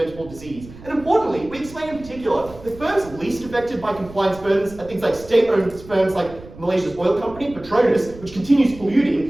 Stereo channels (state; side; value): noise; right; rumble, 18 dB below the sound